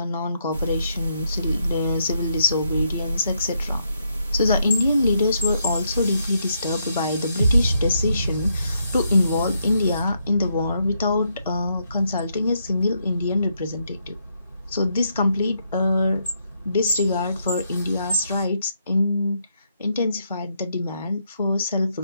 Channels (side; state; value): both; inverted; correlation -0.77